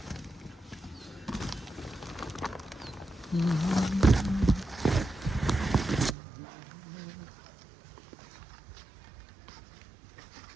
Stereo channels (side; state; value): left; drops out; at 6.2 s